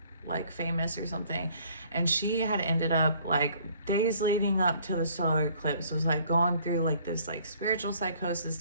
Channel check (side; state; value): both; inverted; correlation -0.58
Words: like famous or something, and she had ended up like days leading up to the solar eclipse was like going through like this like spiritual psychosis